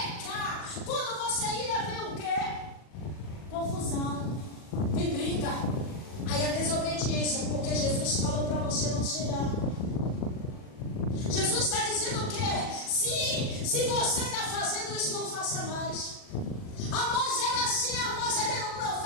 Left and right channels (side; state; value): right; late; 40 ms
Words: Quando você ira, vem o quê? Confusão. Vem briga. Aí a desobediência, porque Jesus falou para você não se irar. Jesus está dizendo o quê? Se você está fazendo isso, não faça mais. Amós era assim, Amós ele era um